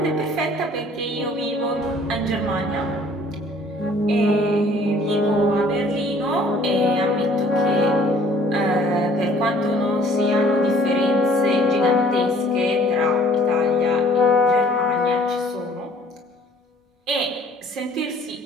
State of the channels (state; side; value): normal; both; correlation 0.55